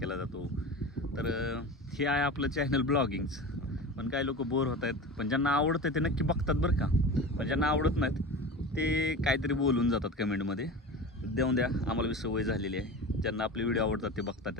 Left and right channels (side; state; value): both; normal; correlation 0.30